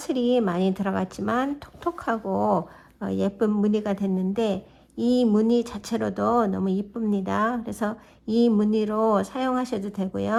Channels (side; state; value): both; identical; correlation 1.00